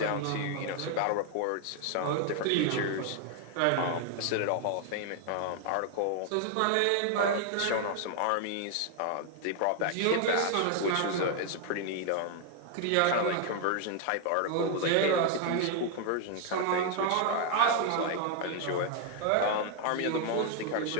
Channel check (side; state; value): both; different; correlation 0.00